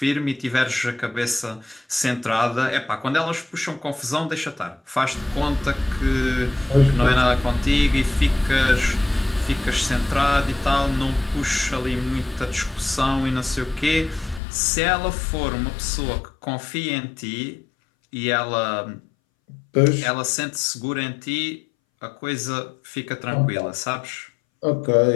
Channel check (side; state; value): right; drops out; at 14.4 s